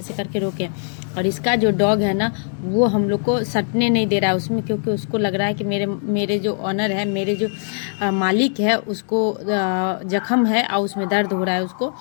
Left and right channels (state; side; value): silent; right; 65 dB below the other